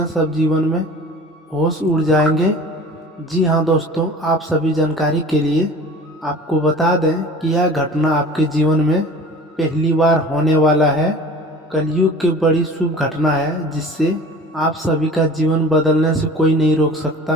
सब जीवन में होश उड़ जाएंगे। जी हाँ दोस्तों, आप सभी जानकारी के लिए आपको बता दें कि यह घटना आपके जीवन में पहली बार होने वाला है। कलयुग की बड़ी शुभ घटना है जिससे आप सभी का जीवन बदलने से कोई नहीं रोक सकता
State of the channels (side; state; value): both; normal; correlation 0.42